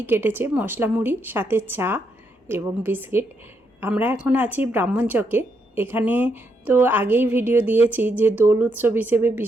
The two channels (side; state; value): both; normal; correlation 0.78